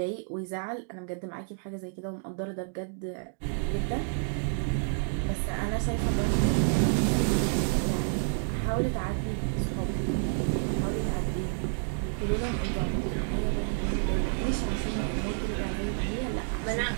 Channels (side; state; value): left; silent; digital silence